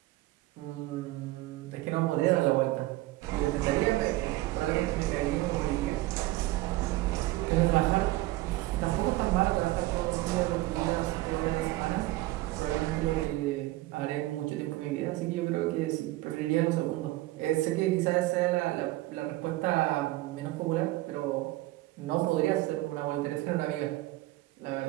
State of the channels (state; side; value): quieter; left; 18.1 dB